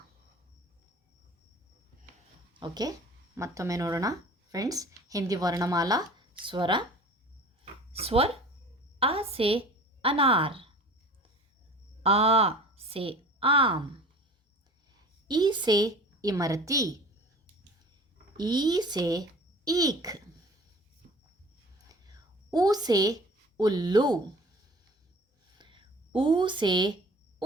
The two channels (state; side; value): normal; both; correlation 0.43